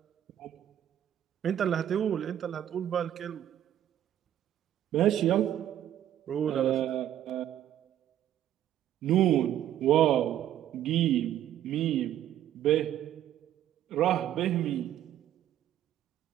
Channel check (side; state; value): left; quieter; 11.4 dB